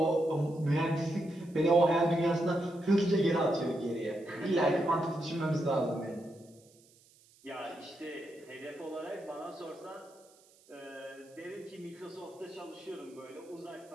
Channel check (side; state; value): right; noise; hiss, 28 dB below the sound